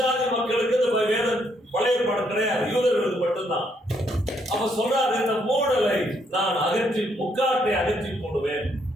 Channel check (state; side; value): normal; both; correlation 0.72